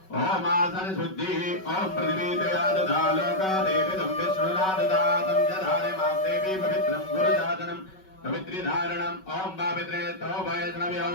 ओम आसन शुद्धि। ओम पृथ्वी दया ददा लोका देवी तम विष्णुना ददातं जधारे मां देवी पवित्रं गुरुजातनं पवित्री धारणम्। ओम पवित्रे तो वैष्णव्यो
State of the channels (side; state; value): right; late; 5.3 ms